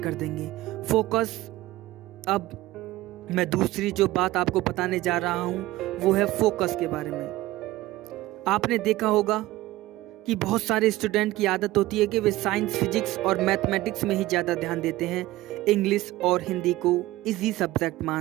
देंगे। फोकस। अब मैं दूसरी जो बात आपको बताने जा रहा हूँ वो है फोकस के बारे में। आपने देखा होगा कि बहुत सारे स्टूडेंट की आदत होती है कि वे साइंस, फिजिक्स और मैथमेटिक्स में ही ज़्यादा ध्यान देते हैं। इंग्लिश और हिंदी को इजी सब्जेक्ट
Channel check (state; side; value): quieter; left; 17.4 dB